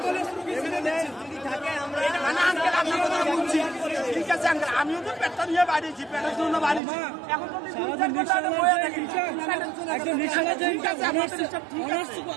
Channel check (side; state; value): left; drops out; at 6.8 s